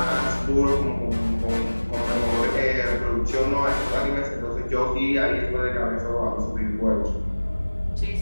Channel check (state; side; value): inverted; both; correlation -1.00